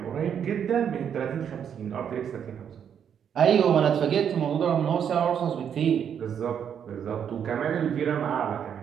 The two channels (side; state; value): left; quieter; 8.3 dB